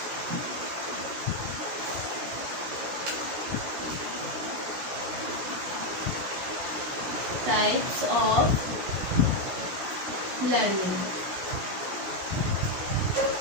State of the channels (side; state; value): left; late; 16 ms